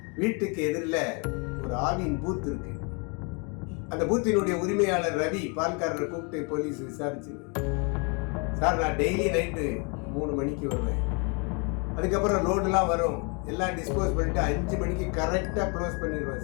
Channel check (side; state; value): right; quieter; 34.0 dB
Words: வீட்டுக்கு எதிரில் ஒரு ஆவின் பூத் இருக்கு. அந்த பூத்தினுடைய உரிமையாளர் ரவி பால்காரரை கூப்பிட்டு போலீஸ் விசாரிச்சு, சார் நான் டெய்லி நைட்டு 3 மணிக்கு வருவேன், அதுக்கப்புறம் லோடுலாம் வரும், எல்லாம் டிஸ்போஸ் பண்ணிட்டு 5 மணிக்கு கரெக்டாக க்ளோஸ்